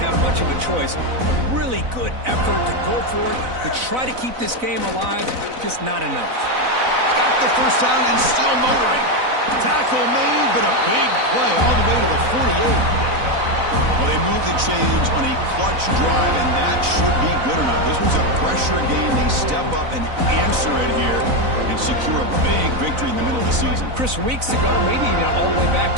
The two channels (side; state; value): left; late; 4.0 ms